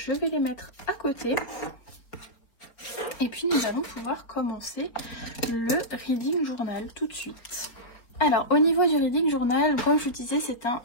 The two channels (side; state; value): right; late; 4.4 ms